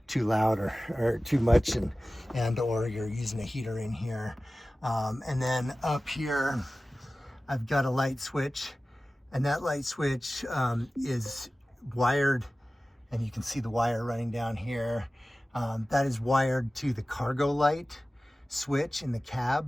too loud or too much, and or you're using a heater in here. And then up here I've got a light switch, and that light switch is wired, and you can see the wire running down here. That is wired to the cargo light switch in the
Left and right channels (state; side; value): normal; both; correlation 0.96